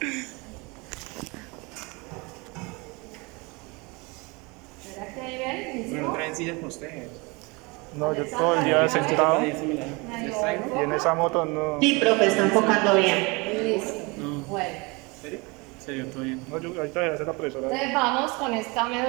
¿Será que ahí ven? No traen sillas para ustedes. No, yo todo el día sentado y en esa moto no. Sí, profe, está enfocando bien. Listo. Bueno. ¿Serio? Serio, todo bien. No, yo ahorita voy a hacer la profesora. Entonces vamos con esta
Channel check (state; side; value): quieter; left; 27.1 dB